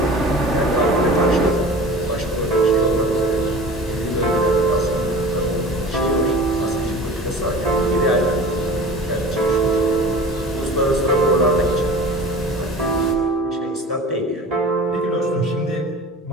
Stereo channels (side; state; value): both; normal; correlation 0.39